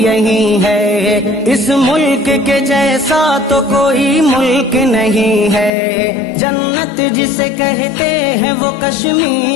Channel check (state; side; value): drops out; right; at 5.7 s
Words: ہے، اس ملک کے جیسا تو کوئی ملک نہیں ہے، جنت جسے کہتے ہیں وہ